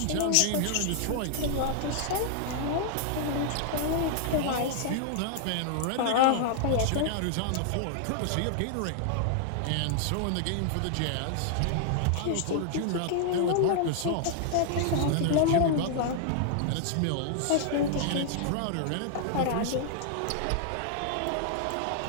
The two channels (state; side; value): different; both; correlation -0.01